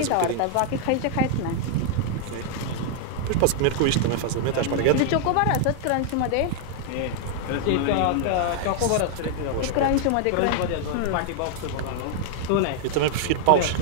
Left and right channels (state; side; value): different; both; correlation 0.00